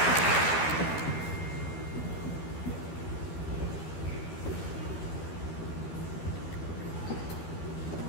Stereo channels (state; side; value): late; right; 12 ms